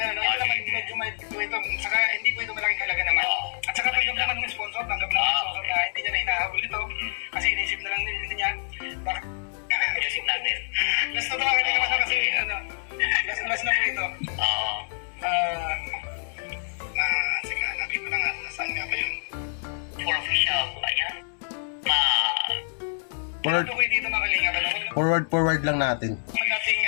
No? Ito naman, medyo may ito. Saka, hindi po ito malaking halaga naman. At saka, tanggap naman ng sponsor. Tanggap naman ng sponsor na hindi niya na hinahabol ito. Kasi inisip na lang hindi niya. Baka, Music natin. last na ito mga kanina kasi, last na po ito. Sige, hanapin ko na nga. Nasaan nga ba yun? For official, ayan. Ito ko dito mga kalinga. Forward lang natin. Nating,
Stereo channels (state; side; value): silent; right; digital silence